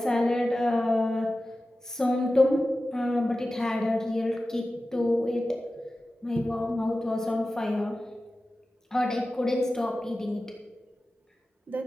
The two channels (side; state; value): both; normal; correlation 0.95